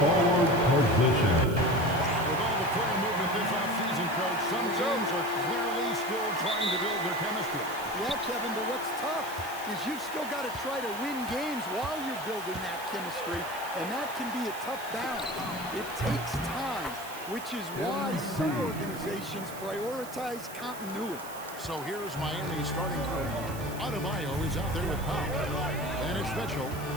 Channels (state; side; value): noise; right; hiss, 15 dB below the sound